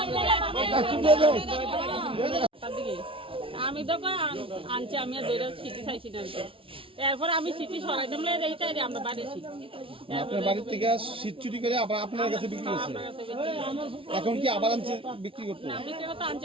আমি তো আনছি আমি আর দুইটা সিটি চাইছি না এরপর আমি সিটি সরাইতাম এইটাই আমরা বাড়িছি আপনার বাড়ির থেকে শীত চুরি করে আবার আপনার কাছে বিক্রি করছে এখন কি আবার আনছে বিক্রি করতে না বিক্রি করতে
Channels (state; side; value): late; left; 0.26 ms